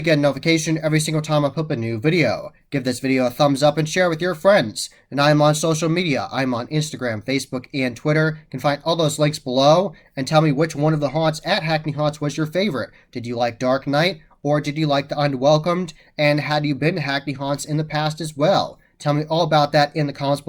get a notification every single time I put a new video. Give this video a thumbs up and share with your friends. And I'm on social media. I'm on Instagram, Facebook, and Twitter. You can find all those links below. And tell me which one of the haunts at Hackney Haunts was your favorite. Did you like Dark Knight? Or did you like the Unwelcomed? And had you been to Hackney Haunts in the past as well? Tell me all about that in the comments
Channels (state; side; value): identical; both; correlation 1.00